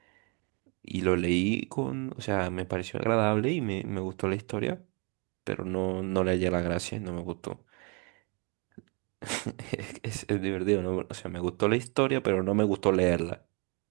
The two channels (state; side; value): quieter; left; 32.9 dB